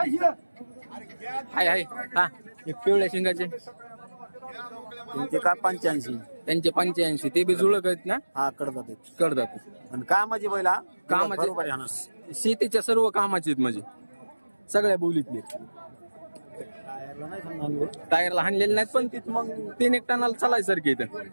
हाय हाय. हा, एक पिवळ्या शिंगाचे त्यांचे का 85. त्यांचे 85. ते बी जुळक आहेत ना? हा, कडदात. कडदात. आणि कामाची बैला कामाचे, शेतीच्या सर्व कामाचे आहेत म्हणजे सगळ्या बोलीतले. टायरला हाणलेले नाहीत, पण तिथं मग 3-1 टनाला चालायसारखे इथं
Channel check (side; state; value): both; inverted; correlation -1.00